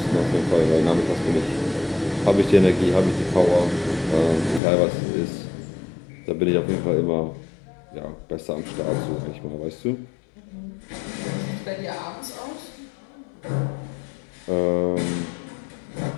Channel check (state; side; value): drops out; right; at 4.6 s